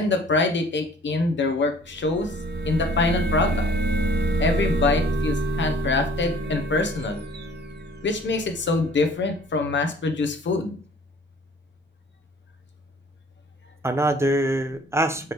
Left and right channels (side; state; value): both; normal; correlation 0.53